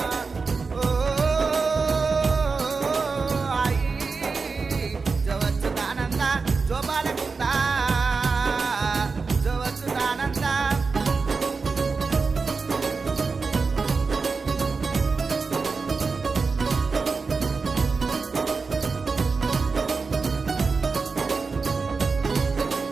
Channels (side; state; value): left; quieter; 4.5 dB